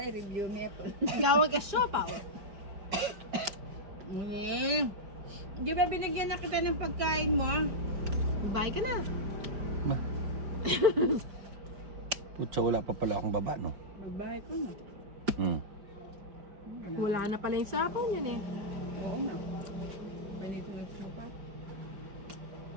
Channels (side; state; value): left; late; 5.0 ms